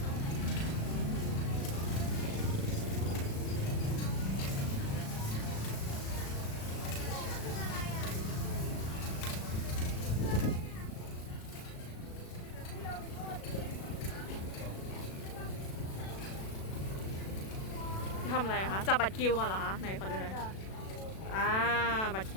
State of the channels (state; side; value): late; right; 36 ms